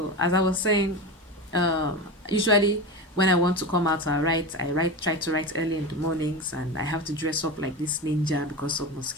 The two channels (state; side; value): normal; both; correlation 0.23